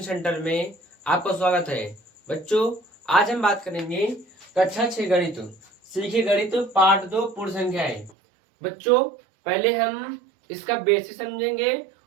centre में आपका स्वागत है। बच्चों, आज हम बात करेंगे कक्षा 6 गणित सीखे गणित पार्ट 2 पूर्ण संख्याएं। बच्चों, पहले हम इसका बेसिक समझेंगे,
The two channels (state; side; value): drops out; left; at 8.1 s